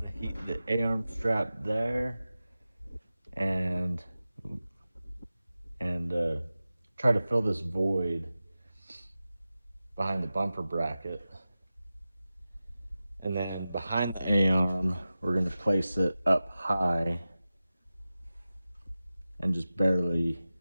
Heat the A-arm strap there, and try to fill this void behind the bumper bracket. And then behind the A-arm, we're going to place it up high and just barely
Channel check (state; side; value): inverted; both; correlation -0.95